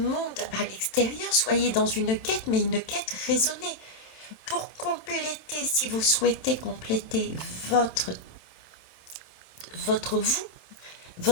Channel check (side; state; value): right; late; 27 ms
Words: à l'extérieur, soyez dans une quête, mais une quête raisonnée. Pour compléter, si vous souhaitez compléter votre vous,